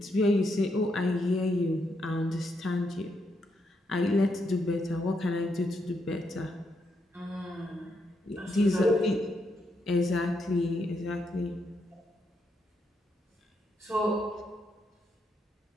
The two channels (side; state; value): both; normal; correlation 0.79